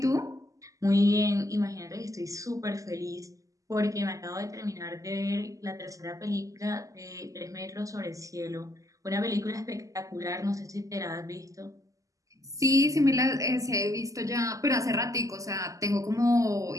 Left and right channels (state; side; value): late; left; 0.16 ms